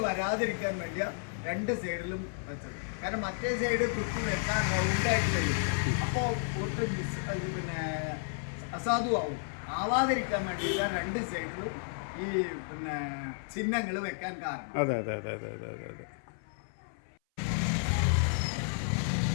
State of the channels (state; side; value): silent; right; 56 dB below the other